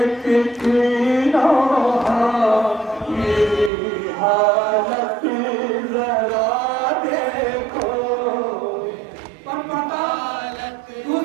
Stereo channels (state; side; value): drops out; left; at 3.7 s